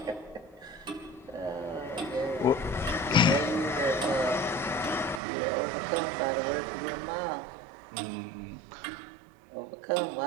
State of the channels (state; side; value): drops out; left; at 5.2 s